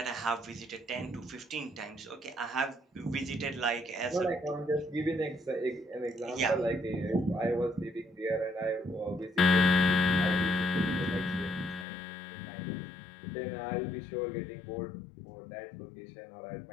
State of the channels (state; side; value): drops out; right; at 11.9 s